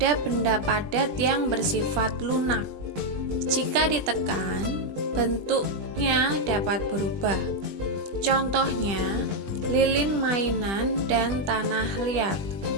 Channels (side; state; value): left; late; 20 ms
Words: benda padat yang bersifat lunak. Jika ditekan, bentuknya dapat berubah. Contohnya, lilin mainan dan tanah liat.